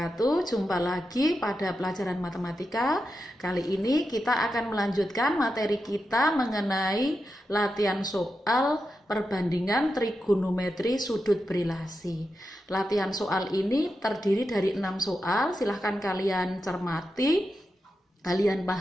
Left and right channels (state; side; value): normal; both; correlation 0.88